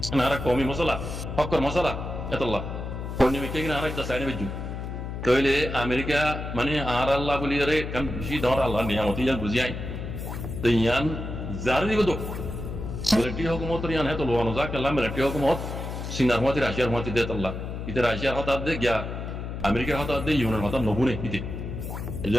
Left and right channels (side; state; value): left; noise; hum, 6 dB below the sound